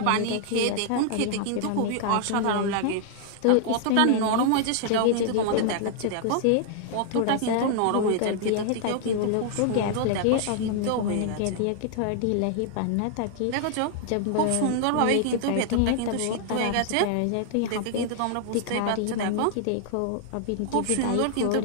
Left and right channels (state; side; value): different; both; correlation 0.00